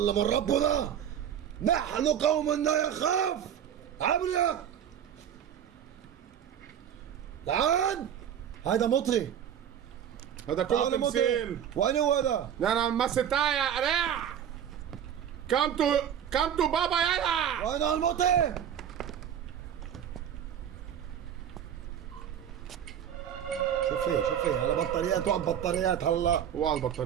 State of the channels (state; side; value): quieter; left; 9.3 dB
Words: من ربنا. نحن قوم لا يخاف. عبريا تعال. هذا مطري. هذا كله تمثيل. وين هو هذا؟ انا مسيتها يا قريع. كم تو بابا يلا. وين المطري؟ شوفي على بطاريات وعلى بطاريات هلا. وعلى